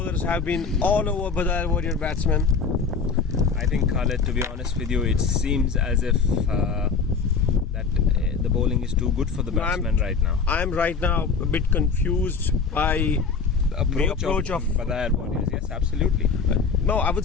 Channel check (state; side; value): quieter; right; 5.3 dB